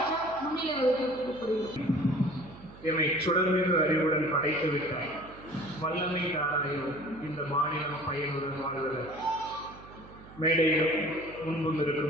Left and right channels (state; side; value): noise; right; hum, 19 dB below the sound